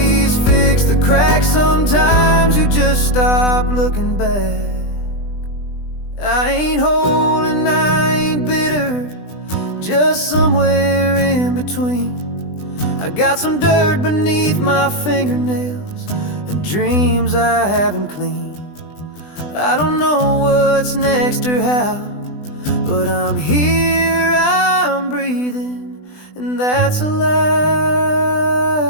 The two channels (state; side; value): late; right; 20 ms